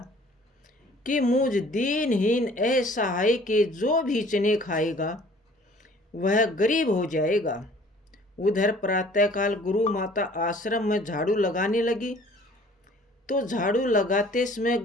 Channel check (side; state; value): both; normal; correlation 0.53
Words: कि मुझ दीनहीन असहाय के जो भी चने खाएगा वह गरीब हो जाएगा। उधर प्रातःकाल गुरु माता आश्रम में झाड़ू लगाने लगी तो झाड़ू लगाते समय